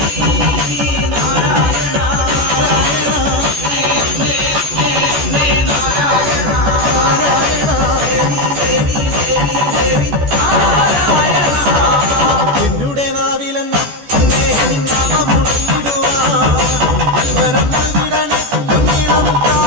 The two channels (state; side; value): late; left; 14 ms